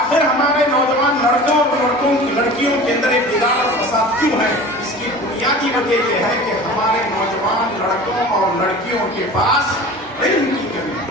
ہمارے نوجوان لڑکوں اور لڑکیوں کے اندر ایک بگاڑ اور فساد کیوں ہے؟ اس کی بنیادی وجہ یہ ہے کہ ہمارے نوجوان لڑکوں اور لڑکیوں کے پاس علم کی کمی ہے.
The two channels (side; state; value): both; normal; correlation 0.38